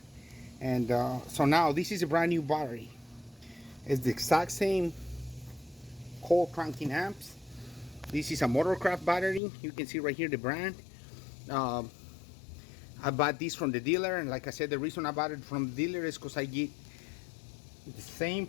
And so now this is a brand new battery. It's the exact same coil cranking amps. This is a Motorcraft battery. You can see right here the brand. I bought this from the dealer, and like I said, the reason I bought it from the dealer is because I get the same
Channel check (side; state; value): right; drops out; at 9.4 s